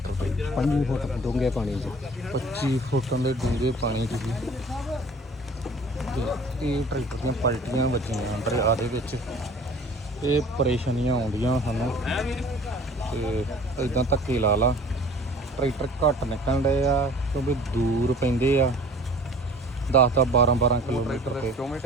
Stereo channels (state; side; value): normal; both; correlation 0.47